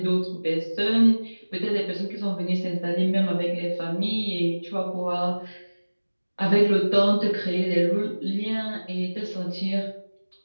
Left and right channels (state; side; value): inverted; both; correlation -1.00